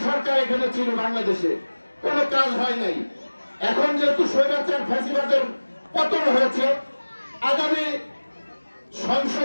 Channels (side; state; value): both; inverted; correlation -1.00